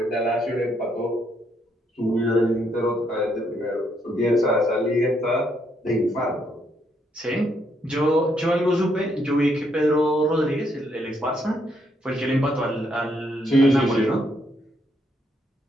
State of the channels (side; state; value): both; normal; correlation 0.74